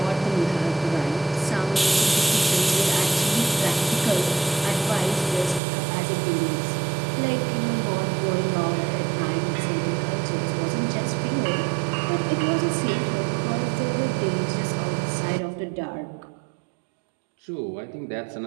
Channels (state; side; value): drops out; left; at 5.6 s